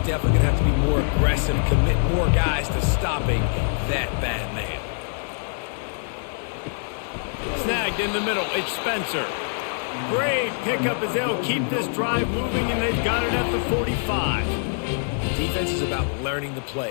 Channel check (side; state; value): right; silent; 62 dB below the other